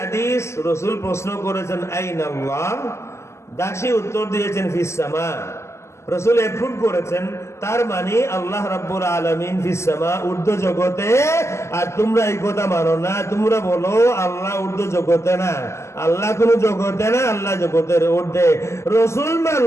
রাসূল প্রশ্ন করেছেন আইনাল্লাহ, দাসী উত্তর দিয়েছেন ফিস সামা। রাসূল এফুট করেছেন, তার মানে আল্লাহ রাব্বুল আলামিন ফিস সামা, ঊর্ধ্ব জগতে। আর তোমরা এই কথা মানো না, তোমরা বলো আল্লাহ ঊর্ধ্ব জগতে না, আল্লাহ কোন জগতে না, আল্লাহ জগতের ঊর্ধ্বে। রাসূল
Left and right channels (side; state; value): right; late; 0.13 ms